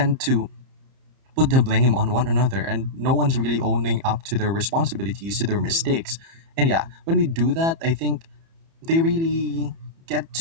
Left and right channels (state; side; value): late; left; 30 ms